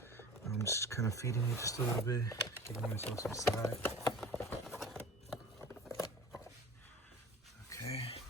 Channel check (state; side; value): normal; both; correlation 0.39